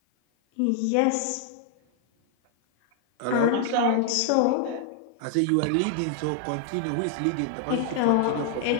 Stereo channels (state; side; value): different; both; correlation 0.00